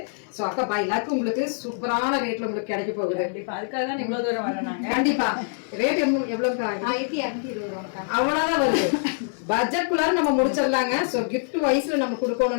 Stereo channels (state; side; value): silent; right; 62 dB below the other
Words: சோ அக்கா பை லக் உங்களுக்கு சூப்பரான ரேட்ல உங்களுக்கு கிடைக்க போகுது. கண்டிப்பா. அதுக்காக தான் இவ்வளவு தூரம் வராங்க. கண்டிப்பா. ரேட் எவ்வளவுக்கா? 1220 ரூபாங்கக்கா. அவ்வளவுதான் வருது. பட்ஜெட் குள்ளார நம்ம முடிச்சிடலாங்க. சோ கிஃப்ட் வைஸ்ல நம்ம